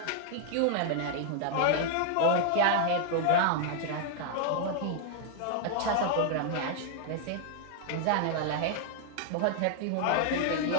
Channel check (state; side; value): different; both; correlation 0.00